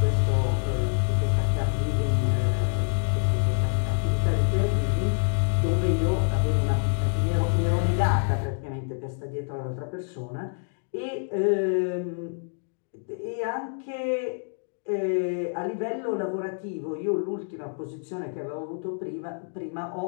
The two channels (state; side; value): silent; right; digital silence